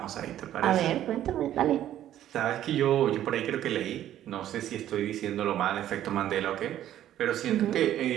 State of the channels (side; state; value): left; quieter; 12.0 dB